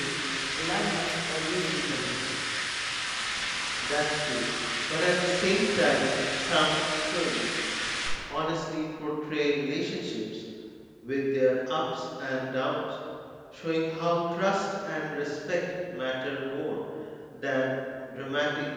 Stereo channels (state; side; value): identical; both; correlation 1.00